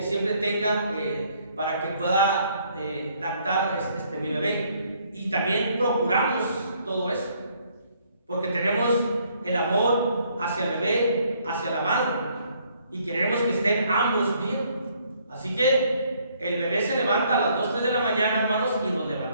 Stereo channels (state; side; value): inverted; both; correlation -0.66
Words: siempre tenga para que pueda lactar mi bebé. Y también procuramos todo eso, porque tenemos el amor hacia el bebé, hacia la madre, y queremos que estén ambos bien. Así que el bebé se levanta a las 2, 3 de la mañana, hermanos, y nos